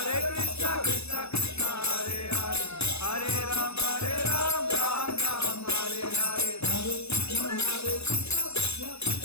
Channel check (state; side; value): late; right; 0.79 ms